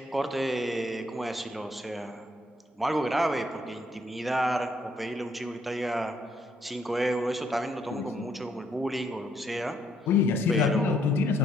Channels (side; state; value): both; normal; correlation 0.71